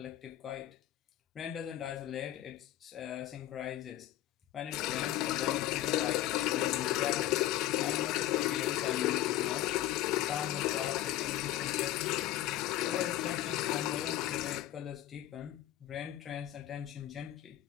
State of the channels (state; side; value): quieter; right; 14.0 dB